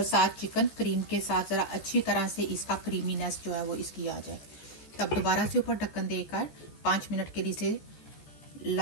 साथ चिकन क्रीम के साथ ज़रा अच्छी तरह से इसका क्रीमीनेस जो है वो इसकी आ जाए। तब दोबारा से ऊपर ढक्कन देकर 5 मिनट के लिए इसे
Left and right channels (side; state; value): right; late; 14 ms